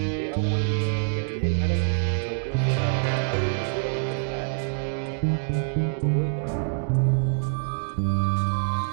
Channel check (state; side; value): silent; left; digital silence